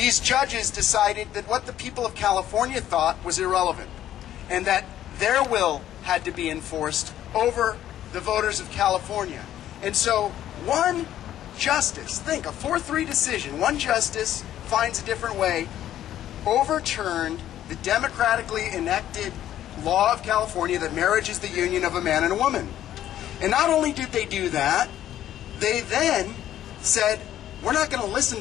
judges decided that what the people of California thought was irrelevant, and that their will had to be enforced over the voters of California. And so one justice, think, a 4-3 decision, one justice finds a different way, overturned the democratically enacted law of California that marriage is the union of a man and a woman. And not only did they do that, they then said, we're not going to listen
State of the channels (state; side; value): quieter; right; 12.0 dB